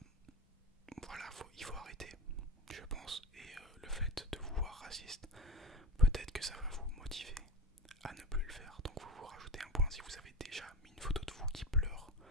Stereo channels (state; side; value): normal; both; correlation 0.24